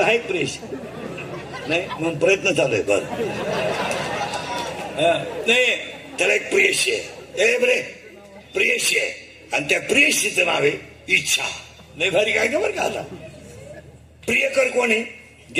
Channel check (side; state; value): both; identical; correlation 1.00